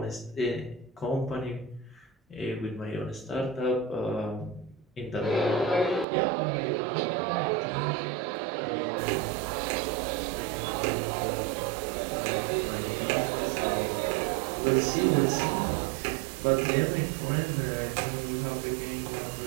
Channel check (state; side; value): drops out; left; at 6.1 s